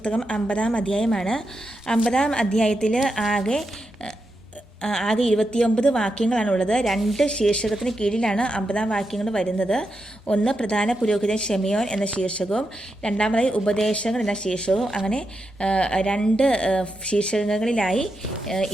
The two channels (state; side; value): normal; both; correlation 0.86